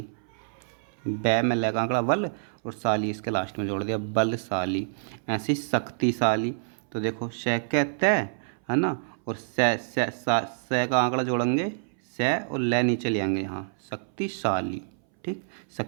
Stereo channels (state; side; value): silent; left; 60 dB below the other